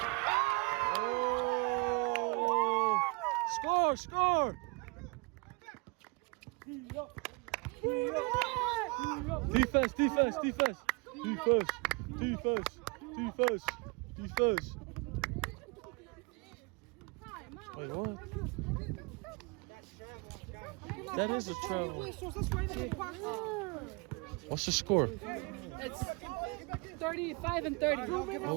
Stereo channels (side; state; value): left; quieter; 30.3 dB